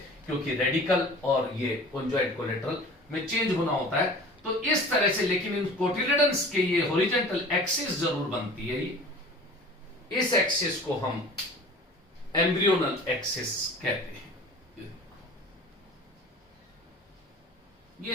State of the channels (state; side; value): normal; both; correlation 0.42